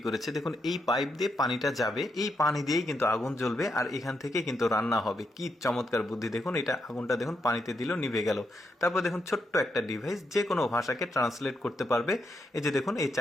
করেছে দেখুন। এই পাইপ দিয়ে পানিটা যাবে, এই পানি দিয়েই কিন্তু আগুন জ্বলবে আর এখান থেকে কিন্তু রান্না হবে। কি চমৎকার বুদ্ধি দেখুন। এটা আগুনটা দেখুন পানিতে দিল, নিভে গেল। তারপর দেখুন ছোট্ট একটা ডিভাইস যে কোনো ভাষাকে ট্রান্সলেট করতে পারবে। এই যে দেখুন, এই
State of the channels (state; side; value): normal; both; correlation 0.81